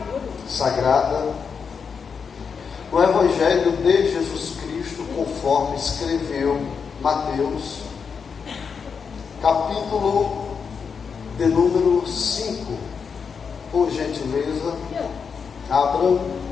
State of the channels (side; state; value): right; quieter; 6.0 dB